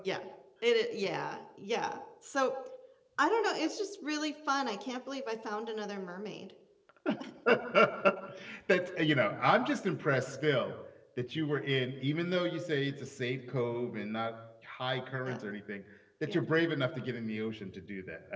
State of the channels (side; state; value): both; identical; correlation 1.00